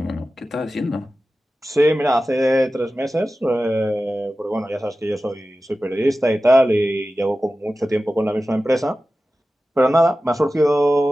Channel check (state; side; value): normal; both; correlation 0.95